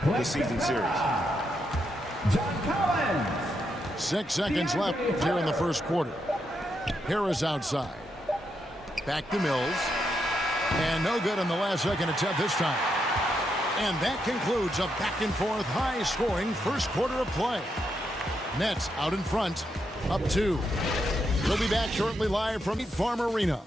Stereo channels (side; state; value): both; normal; correlation 0.81